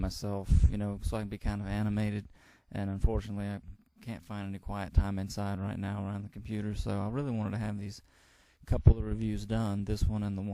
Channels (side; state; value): both; identical; correlation 1.00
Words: so I can be kind of animated, and unfortunately I can't find any quiet time inside right now around the computer, so I really wanted to have these couple of reviews done, this one and the